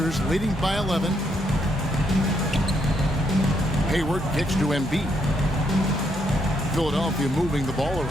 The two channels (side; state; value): both; normal; correlation 0.75